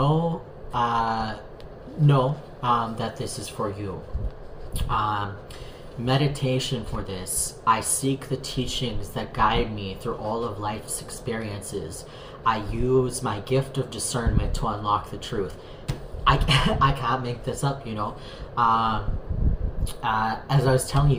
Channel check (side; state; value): both; identical; correlation 1.00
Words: that this is for you. Meditation for this. I seek the teachings that guide me through all of life's experiences. I use my gift of discernment to unlock the truth. I can't make this up, as I was telling